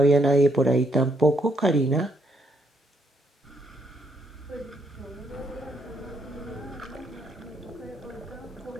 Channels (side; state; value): both; normal; correlation 0.73